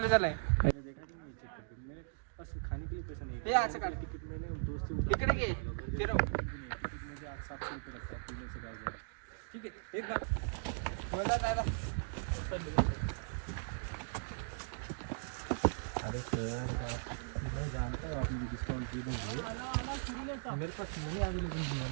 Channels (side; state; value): left; silent; digital silence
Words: झालाय हे असं काढ. इकडे घे. ठीक आहे, एक बात. बोला दादा अरे सर मैं जानता हूँ आप मुझे डिस्काउंट दे देंगे, मेरे पास मनी अवेलेबल नहीं है